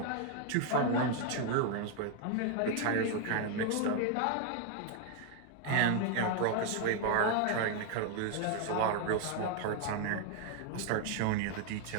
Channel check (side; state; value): both; different; correlation 0.01